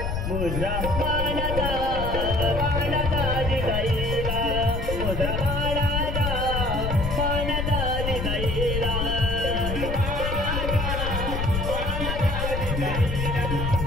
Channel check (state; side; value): noise; left; rumble, 2 dB below the sound